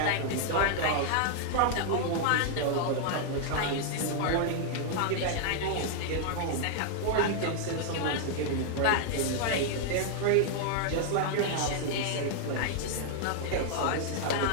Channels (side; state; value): both; different; correlation 0.00